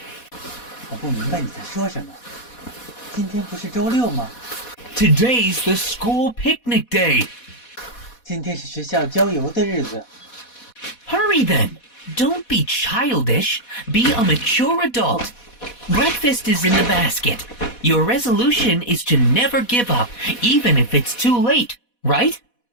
我不明白你在说什么。今天不是周六吗？ Today's the school picnic day. 今天是学校郊游的日子。 Hurry then. Don't be childish. Be a mature adult. Breakfast is in the basket. Your resolution is to never give up, even if it's too late, right?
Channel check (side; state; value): right; late; 4.1 ms